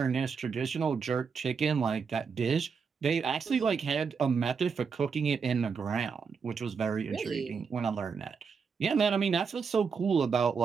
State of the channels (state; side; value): quieter; left; 5.8 dB